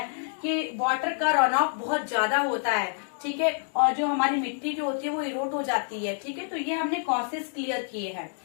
कि वाटर का रन ऑफ बहुत ज्यादा होता है, ठीक है, और जो हमारी मिट्टी जो होती है वो इरोट हो जाती है, ठीक है। तो ये हमने कॉसेस क्लियर किए हैं,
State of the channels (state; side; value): silent; right; digital silence